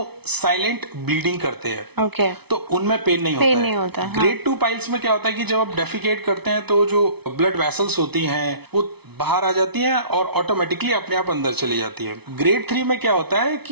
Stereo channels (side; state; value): left; late; 0.98 ms